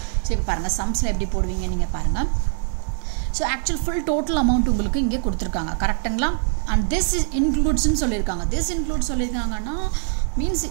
சோ இப்போ பாருங்க சம்ஸ்ல எப்படி போடுவீங்க நீங்க பாருங்க. So actual full total amount உங்களுக்கு இங்கே கொடுத்திருக்காங்க. கரெக்ட்டுங்களா? and this includes ன்னு சொல்லிருக்காங்க. this includes சொல்லிருக்காங்கன்னா means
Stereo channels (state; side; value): silent; left; digital silence